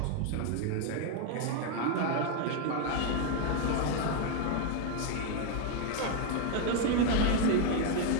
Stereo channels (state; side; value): different; both; correlation 0.01